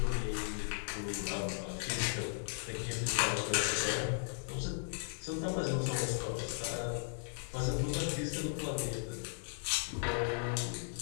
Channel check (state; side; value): silent; right; digital silence